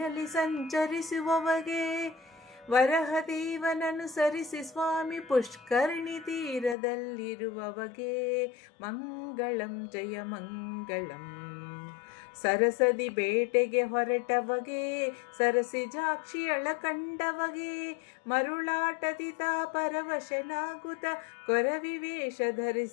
ಸಂಚರಿಸುವವಗೆ, ವರಹದೇವನನುಸರಿಸಿ ಸ್ವಾಮಿ ಪುಷ್ಕರಣಿ ತೀರದಲ್ಲಿರುವವಗೆ, ಮಂಗಳಂ ಜಯ ಮಂಗಳಂ. ಸರಸದಿ ಬೇಟೆಗೆ ಹೊರಟವಗೆ, ಸರಸಿಜಾಕ್ಷಿಯಳ ಕಂಡವಗೆ, ಮರುಳಾಟದಿ ತಾ ಪರವಶನಾಗುತ್ತ ಕೊರವಿವೇಷ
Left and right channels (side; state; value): right; drops out; at 6.8 s